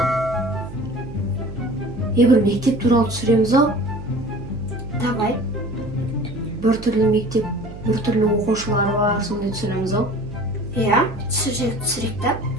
Бір мектеп туралы түсіреміз ау? Давай. Бір түрлі мектеп, бір түрлі оқушылар бар, сондай түсіреміз ау? Иә, түсірек та.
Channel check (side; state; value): right; noise; hum, 13 dB below the sound